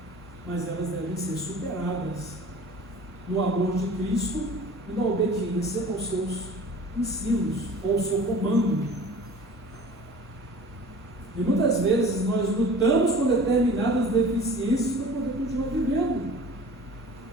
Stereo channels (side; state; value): both; normal; correlation 0.43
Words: mas elas devem ser superadas no amor de Cristo e na obediência aos seus ensinos, ou ao seu comando. E muitas vezes nós lutamos com determinadas deficiências para poder continuar vivendo.